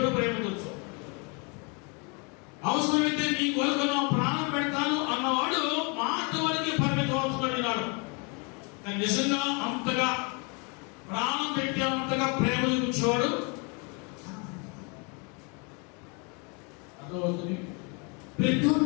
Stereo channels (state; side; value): quieter; right; 33.0 dB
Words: ప్రేమించవచ్చు. అవసరమైతే నీ కొరకు నా ప్రాణం పెడతాను అన్నవాడు మాట వరకు పరిమితం అవుతున్నాడు. కానీ నిజంగా అంతగా ప్రాణం పెట్టి అంతగా ప్రేమ చూపించేవాడు అర్థమవుతుంది.